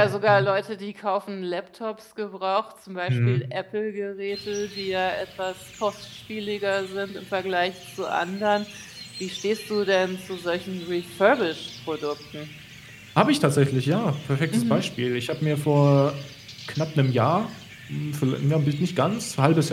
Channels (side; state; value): both; identical; correlation 1.00